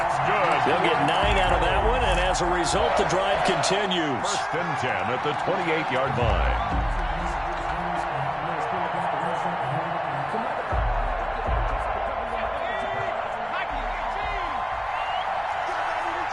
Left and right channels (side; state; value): both; identical; correlation 1.00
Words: good. They'll get 9 out of that one, and as a result, the drive continues. 1st and 10 at the 28-yard line.